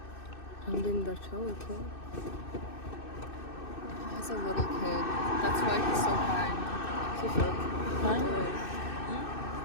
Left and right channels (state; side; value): late; right; 2.6 ms